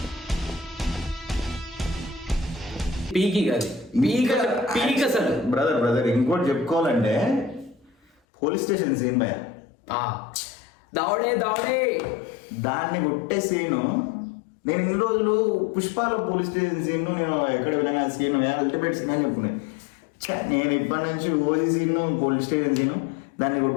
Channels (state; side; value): drops out; right; at 8.1 s